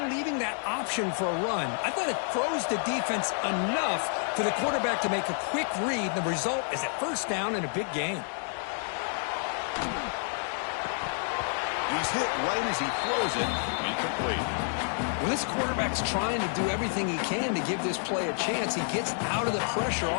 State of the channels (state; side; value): silent; right; 58 dB below the other